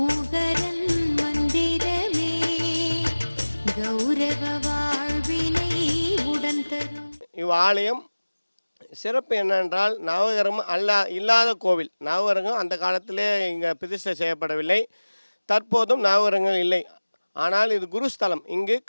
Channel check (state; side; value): inverted; both; correlation -1.00